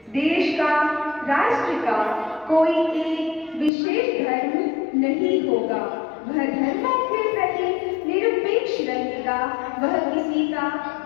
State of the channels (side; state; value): right; drops out; at 3.7 s